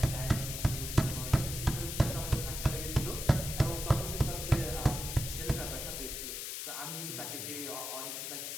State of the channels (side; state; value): left; noise; hiss, 5 dB below the sound